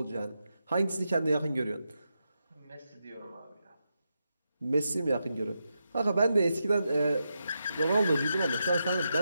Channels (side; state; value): both; inverted; correlation -0.86